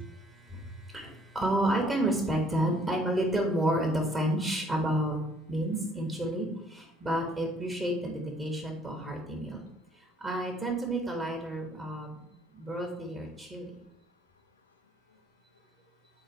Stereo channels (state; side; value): normal; both; correlation 0.62